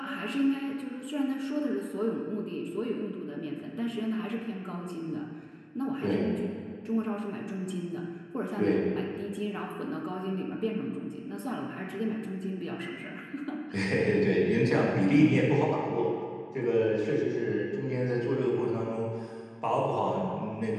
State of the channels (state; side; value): identical; both; correlation 1.00